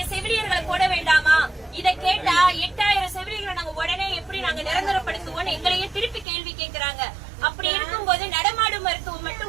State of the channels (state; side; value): drops out; left; at 6.2 s